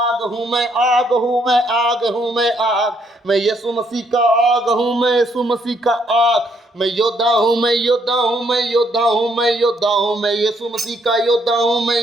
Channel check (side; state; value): both; normal; correlation 0.71